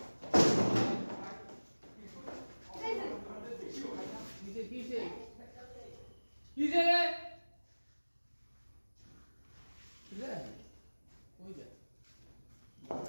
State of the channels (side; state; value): both; inverted; correlation -1.00